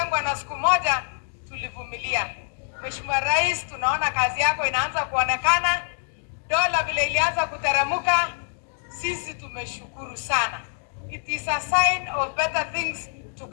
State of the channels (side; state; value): right; silent; 62 dB below the other